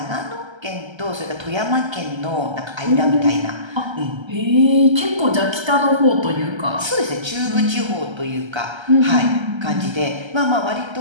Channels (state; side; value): late; left; 1.3 ms